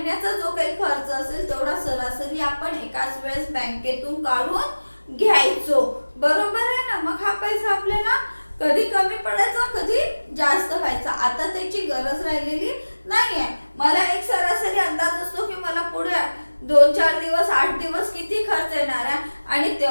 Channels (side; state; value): both; inverted; correlation -1.00